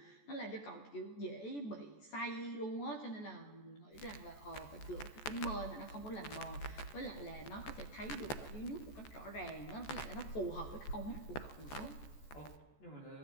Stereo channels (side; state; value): right; late; 14 ms